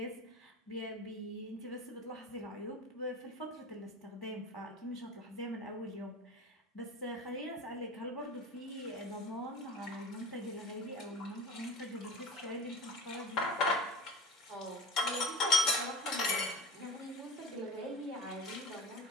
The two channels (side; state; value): both; normal; correlation 0.36